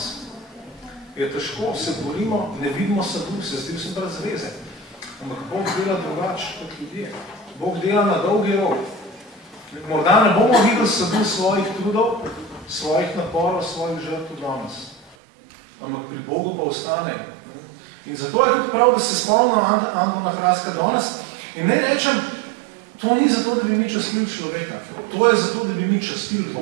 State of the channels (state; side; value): drops out; left; at 15.2 s